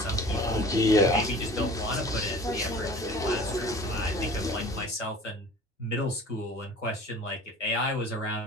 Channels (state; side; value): normal; both; correlation 0.43